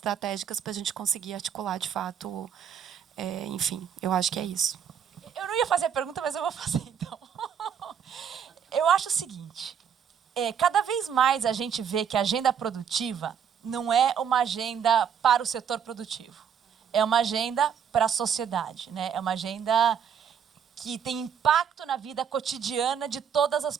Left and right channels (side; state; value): left; quieter; 7.9 dB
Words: para a gente conseguir articular, de fato, enfim, eu acho que é isso. Eu não ia fazer a pergunta, mas eu vou fazer, então. Eu acho o seguinte, cada vez mais a gente vê que a agenda produtiva não é uma agenda para o setor produtivo. É uma agenda para a sociedade, né? É uma agenda que tem impacto na vida cotidiana de todas as